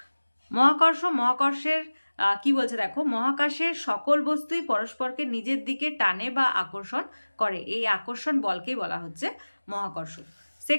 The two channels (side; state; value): both; inverted; correlation -1.00